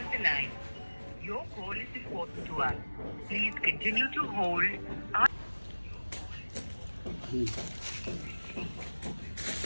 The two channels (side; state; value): both; inverted; correlation -1.00